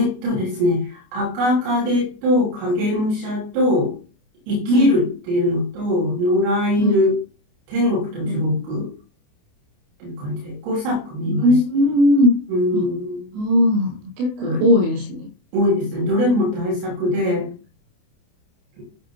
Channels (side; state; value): left; late; 28 ms